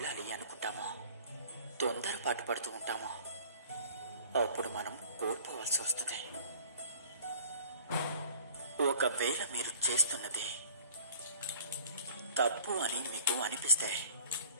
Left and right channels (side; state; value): both; inverted; correlation -0.47